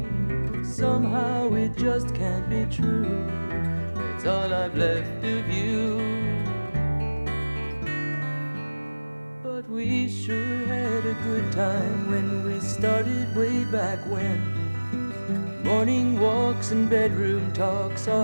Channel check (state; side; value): inverted; both; correlation -1.00